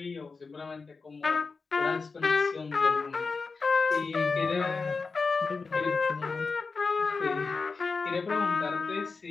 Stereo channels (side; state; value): right; quieter; 4.5 dB